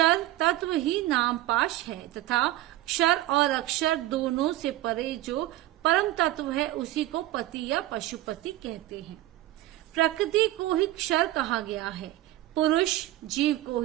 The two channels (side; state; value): left; quieter; 15.7 dB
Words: तत्व ही नाम पाश है तथा क्षर और अक्षर दोनों से परे जो परम तत्व है उसी को पति या पशुपति कहते हैं। प्रकृति को ही क्षर कहा गया है, पुरुष जीव को